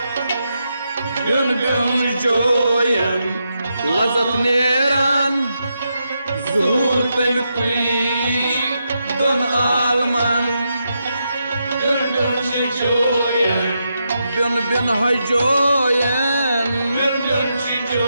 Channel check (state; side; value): inverted; both; correlation -0.84